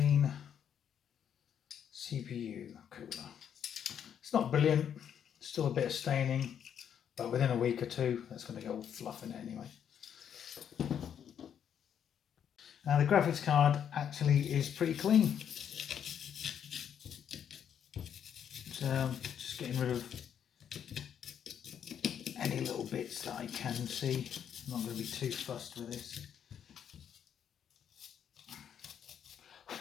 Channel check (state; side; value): quieter; right; 8.7 dB